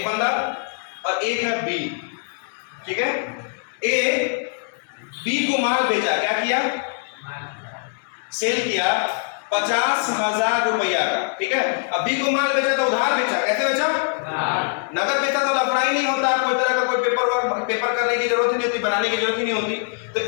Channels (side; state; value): right; silent; 64 dB below the other